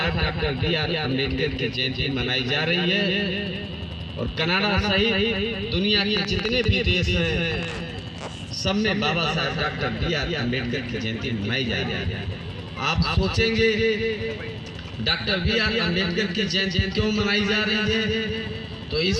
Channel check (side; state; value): both; identical; correlation 1.00